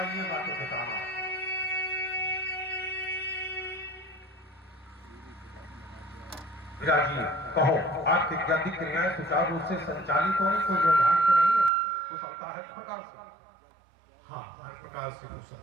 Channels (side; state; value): left; drops out; at 11.7 s